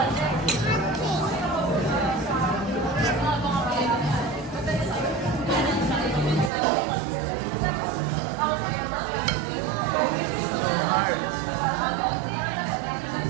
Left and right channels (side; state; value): left; drops out; at 6.5 s